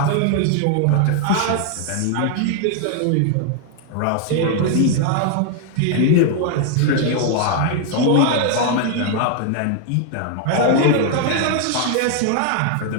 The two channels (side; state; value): both; different; correlation 0.00